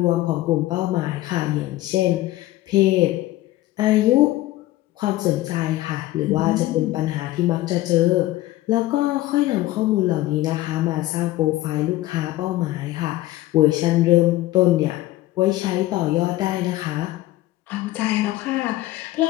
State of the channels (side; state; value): right; quieter; 16.4 dB